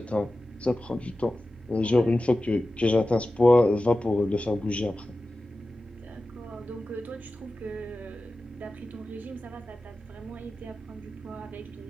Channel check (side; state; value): both; normal; correlation 0.95